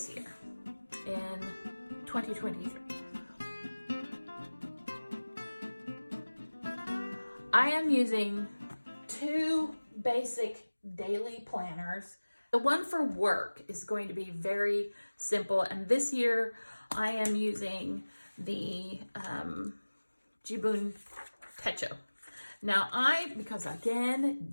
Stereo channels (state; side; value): inverted; both; correlation -1.00